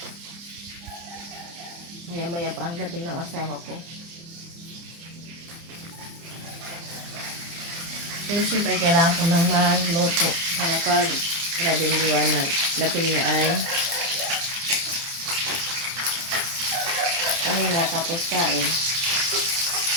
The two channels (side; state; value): left; late; 30 ms